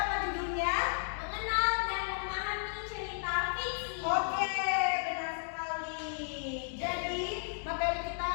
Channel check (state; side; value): silent; right; digital silence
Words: judulnya? Mengenal dan memahami cerita fiksi. Oke, benar sekali. Jadi materi kita